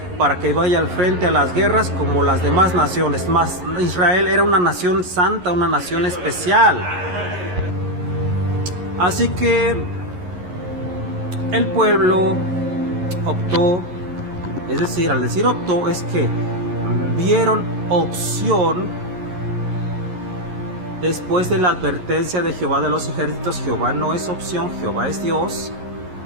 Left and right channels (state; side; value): late; left; 11 ms